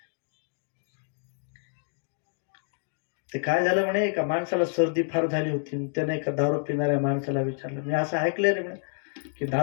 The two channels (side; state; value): right; silent; digital silence